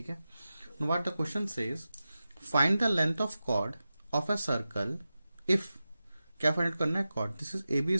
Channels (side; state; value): both; inverted; correlation -0.94